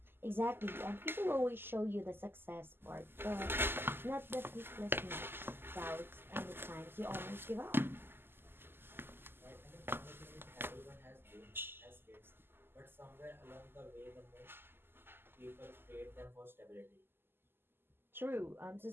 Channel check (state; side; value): late; left; 0.11 ms